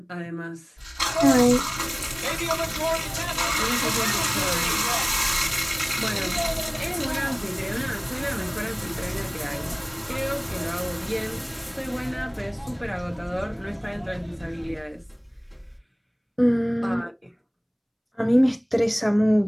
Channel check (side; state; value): both; identical; correlation 1.00